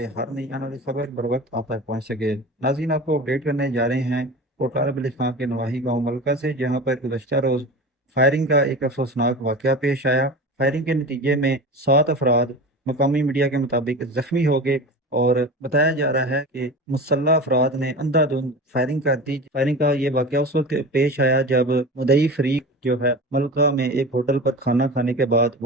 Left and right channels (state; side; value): normal; both; correlation 0.31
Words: हर नई आने वाली खबर बर वक्त आप तक पहुंच सके। नाज़रीन, आपको अपडेट करने जा रहे हैं कोटला बिल इस्लाम के नवाही गाँव मलका से, जहां पर गुज़श्ता रोज़ फायरिंग का एक अफसोसनाक वाक़या पेश आया। फायरिंग के नतीजे में 7 अफराद मकामी मीडिया के मुताबिक ज़ख्मी हो गए और बताया जा रहा है कि मुसल्लह अफराद ने अंधाधुंध फायरिंग कर दी। फायरिंग का ये वाकया उस वक्त पेश आया जब मुदई फरीक जो है मलका में एक होटल पर खाना खाने के बाद